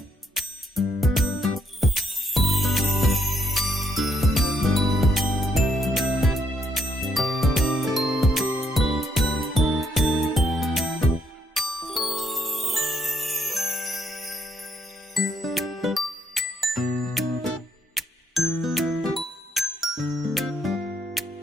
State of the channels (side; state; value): both; normal; correlation 0.72